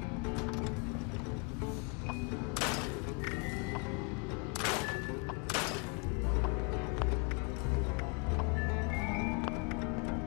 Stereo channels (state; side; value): quieter; right; 34.1 dB